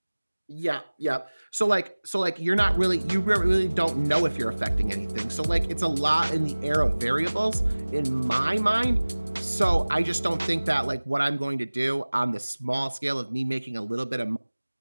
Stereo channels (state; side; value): inverted; both; correlation -1.00